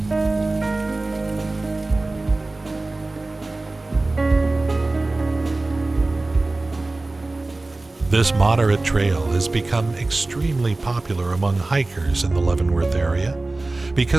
This moderate trail has become extremely popular among hikers in the Leavenworth area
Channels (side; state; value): left; quieter; 3.1 dB